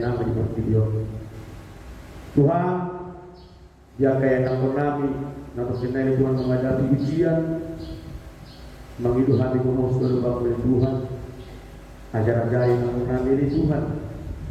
namin di video Tuhan dia kaya namun namin Namun kenal Tuhan menghadapi ujian, mengidu hati kumus berubah oleh Tuhan, ajar-ajar yang mengambil Tuhan.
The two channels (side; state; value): both; identical; correlation 1.00